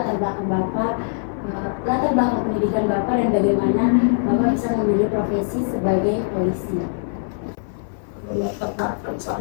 belakang Bapak, latar belakang pendidikan Bapak, dan bagaimana Bapak bisa memilih profesi sebagai polisi? Kalau latar belakang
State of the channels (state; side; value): silent; right; 58 dB below the other